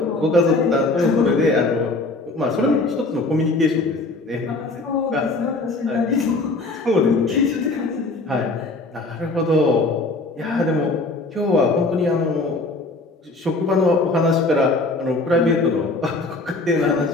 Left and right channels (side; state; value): right; quieter; 3.2 dB